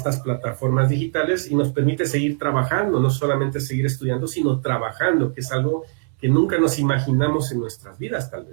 plataformas digitales y nos permite seguir trabajando, no solamente seguir estudiando, sino trabajando, que es algo que nunca nos imaginamos en nuestras vidas, tal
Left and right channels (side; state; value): left; silent; 65 dB below the other